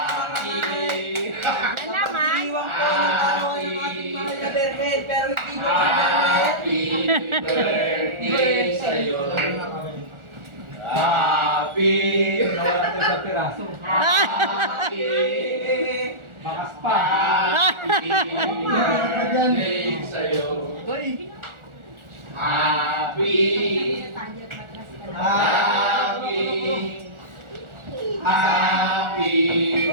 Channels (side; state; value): left; late; 1.4 ms